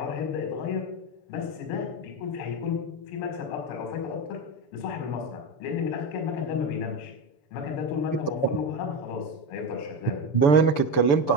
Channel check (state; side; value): late; right; 6.9 ms